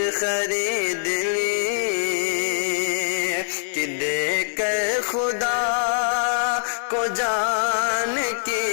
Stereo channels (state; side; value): silent; right; 62 dB below the other